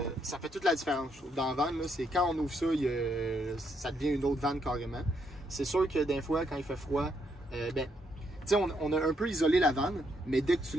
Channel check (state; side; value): normal; both; correlation 0.76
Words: ça fait toute la différence. Dans la van, là, c'est quand on ouvre ça, ça devient une autre van carrément. C'est sûr que des fois, quand il fait froid, on a un peu isolé la vanne, mais dès que tu